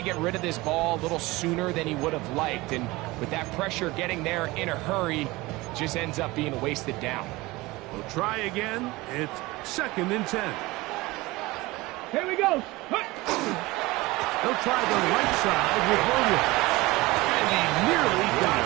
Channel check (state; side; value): quieter; left; 21.1 dB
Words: get rid of this ball a little sooner than he would have liked. And with that pressure getting there in a hurry, just ends up being a wasted down. We'll try again. It's 2nd and 10. Here we go. He'll try the right side with Williams. And he nearly got